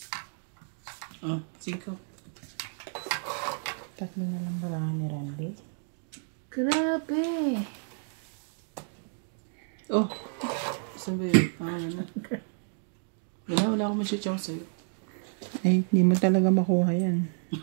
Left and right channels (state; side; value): silent; left; 58 dB below the other